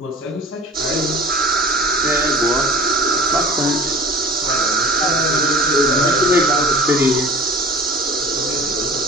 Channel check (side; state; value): both; normal; correlation 0.40